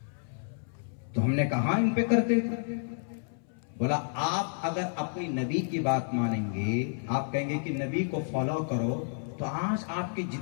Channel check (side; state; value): right; silent; 58 dB below the other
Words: तो हमने कहा इन पे करते थे, बोला आप अगर अपनी नबी की बात मानेंगे, आप कहेंगे कि नबी को फॉलो करो, तो आज आपके